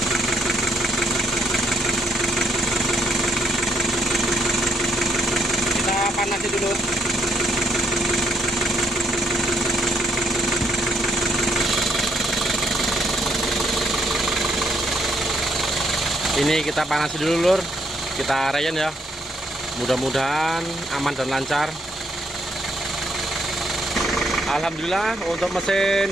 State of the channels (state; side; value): normal; both; correlation 0.73